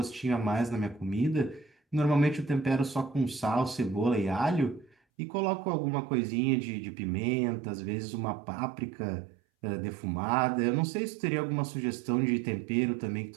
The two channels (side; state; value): left; drops out; at 5.0 s